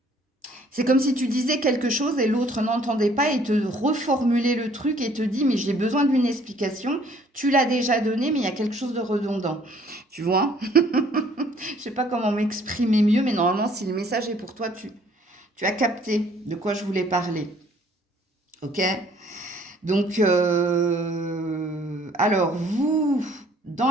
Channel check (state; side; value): normal; both; correlation 0.59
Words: C'est comme si tu disais quelque chose et l'autre n'entendait pas et te reformulait le truc et te dit mais j'ai besoin d'une explication, tu l'as déjà donné mais il y a quelque chose de redondant. Tu vois? Je sais pas comment m'exprimer mieux, mais normalement si le message est pour toi, tu as capté de quoi je voulais parler. Ok? Donc, alors vous,